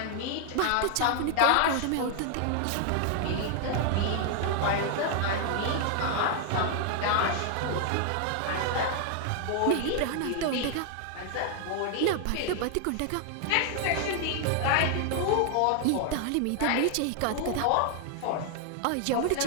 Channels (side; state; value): both; different; correlation 0.00